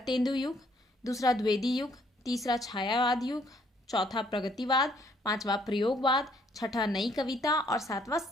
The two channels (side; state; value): both; normal; correlation 0.66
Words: तेंदु युग, दूसरा द्विवेदी युग, तीसरा छायावाद युग, चौथा प्रगतिवाद, 5वां प्रयोगवाद, 6ठा नई कविता और 7वां